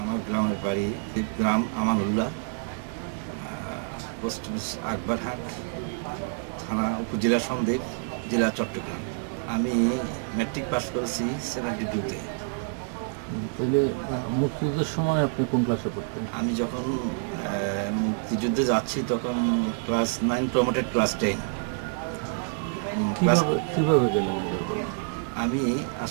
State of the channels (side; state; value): left; silent; 60 dB below the other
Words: গ্রামের বাড়ি গ্রাম আমানুল্লাহ, পোস্ট অফিস আকবরহাট, থানা উপজেলা সন্দ্বীপ, জেলা চট্টগ্রাম। আমি ম্যাট্রিক পাস করেছি 72-তে। তাহলে মুক্তিযুদ্ধের সময় আপনি কোন ক্লাসে পড়তেন? আমি যখন মুক্তিযুদ্ধে যাচ্ছি তখন ক্লাস 9 প্রমোটেড ক্লাস 10। কিভাবে গেলেন? আমি